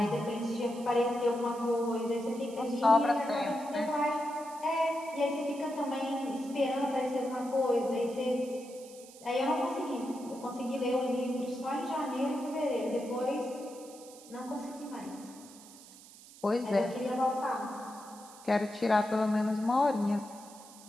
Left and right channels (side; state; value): right; noise; hiss, 20 dB below the sound